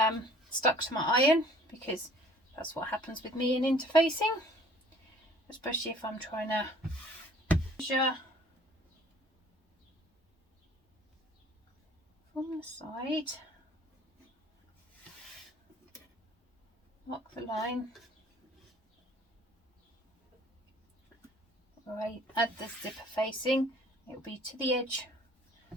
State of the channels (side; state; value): both; normal; correlation 0.53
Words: stuck to my iron, because that's what happens with me in interfacing, especially if I'm trying to measure from the side, mark the line. Right, add the zipper facing, it will be to the edge